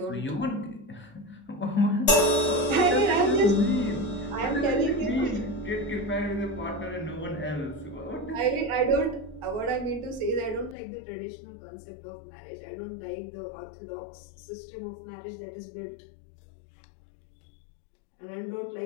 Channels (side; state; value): right; drops out; at 10.8 s